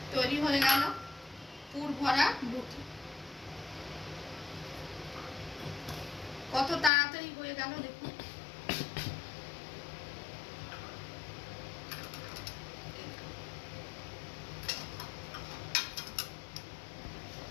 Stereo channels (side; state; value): right; drops out; at 6.9 s